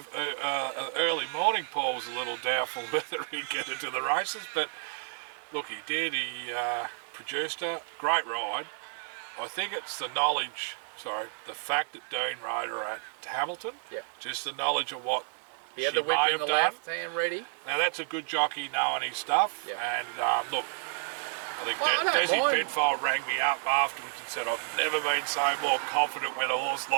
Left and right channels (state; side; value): silent; left; digital silence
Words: early morning, Paul was a little doubtful whether he'd get into the races. But look, he did. He produced a great ride. I think it's the fact that Dean rode her at Hamilton. Yeah. Just the knowledge of what he had the whip in the left hand ready. Now that's a good jockey knowing his stuff. Yeah. And look, I think Desi Penfold rang me up afterwards and said, I've never been so more confident when a horse